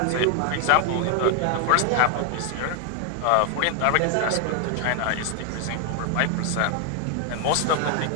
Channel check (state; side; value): different; both; correlation 0.01